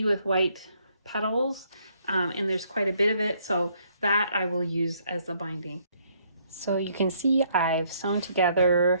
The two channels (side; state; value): both; inverted; correlation -0.68